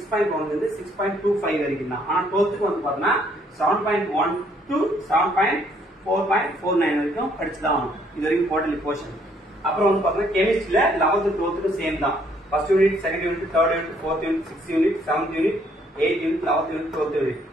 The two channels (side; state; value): both; normal; correlation 0.66